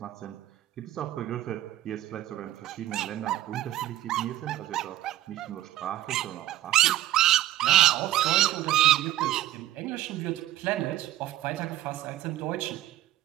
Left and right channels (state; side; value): quieter; left; 14.2 dB